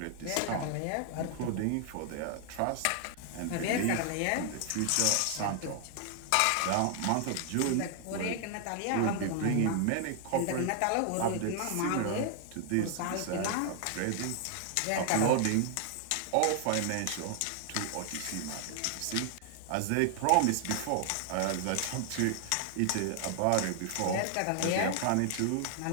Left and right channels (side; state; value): both; different; correlation 0.00